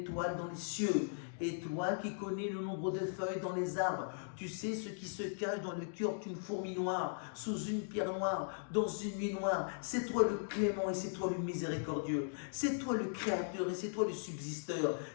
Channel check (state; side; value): silent; right; digital silence